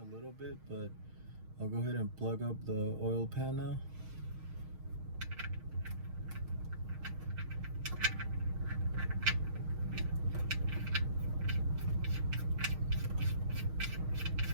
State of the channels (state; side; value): late; left; 6.4 ms